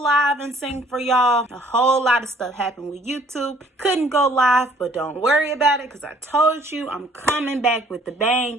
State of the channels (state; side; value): normal; both; correlation 0.59